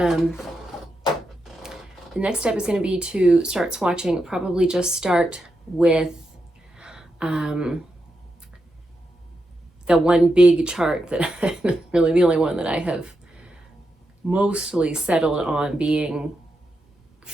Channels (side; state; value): both; normal; correlation 0.86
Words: next step is going to be to start swatching. Probably just start with the one big chart that really the only one that I have mostly settled on being